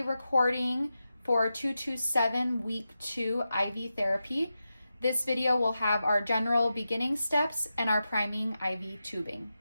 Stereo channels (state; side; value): inverted; both; correlation -0.91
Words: recording for 227 week 2 IV therapy. This video will have our general beginning steps and our priming IV tubing.